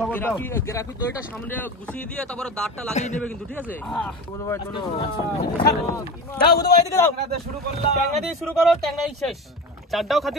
দাও? গ্রাফি দইটা সামনে গুছিয়ে দিয়ে তারপরে দাঁতটা লাগিয়ে নেবে কিন্তু, ঠিক আছে? বন্ধু ভাই চলো। দাও বুধু ভাই দিকে দাও। ট্যাংরা শুরু করলাম। ট্যাংরা দিয়ে শুরু করো, ট্যাংরাই শেষ। চারটাও খাতি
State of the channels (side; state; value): both; normal; correlation 0.28